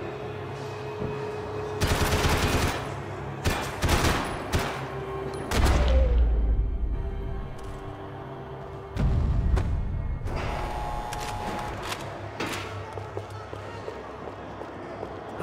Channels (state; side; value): identical; both; correlation 1.00